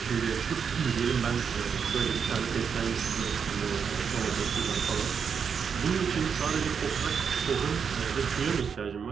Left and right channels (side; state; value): left; quieter; 6.7 dB